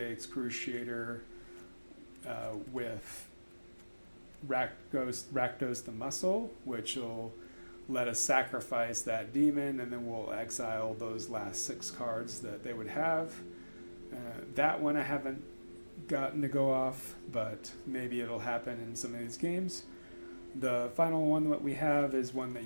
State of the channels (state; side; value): inverted; both; correlation -1.00